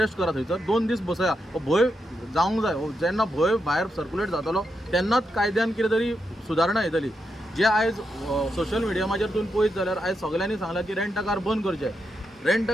करा थंयसर 2 दीस बसया हो भंय जावंक जाय जेन्ना भंय भायर सर्क्युलेट जातलो तेन्नाच कायद्यान कितें तरी सुदारणा येतली जे आयज सोशल मिडियामाचेर तुमी पळयत जाल्यार आयज सगळ्यांनी सांगलां की रेंट अ कार बंद करचे रेंट अ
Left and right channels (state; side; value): normal; both; correlation 0.84